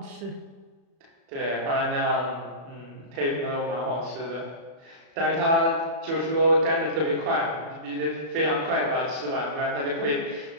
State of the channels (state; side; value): late; left; 36 ms